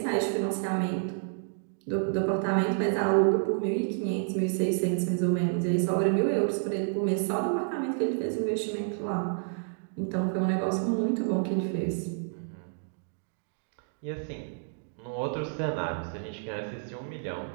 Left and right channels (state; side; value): silent; left; digital silence